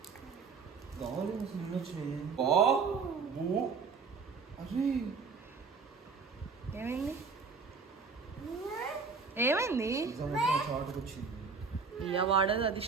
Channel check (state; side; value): quieter; left; 5.0 dB